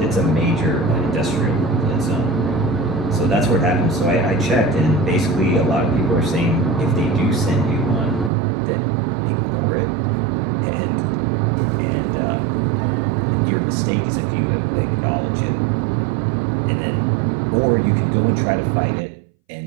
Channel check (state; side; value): drops out; left; at 8.3 s